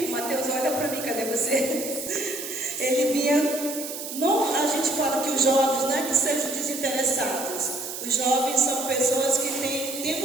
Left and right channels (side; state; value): right; noise; hiss, 8 dB below the sound